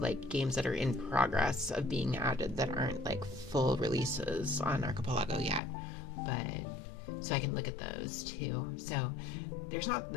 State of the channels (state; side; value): drops out; right; at 5.6 s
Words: games that are in progress of being added that aren't like full releases on Archipelago yet, but so I can look at those too. So there's not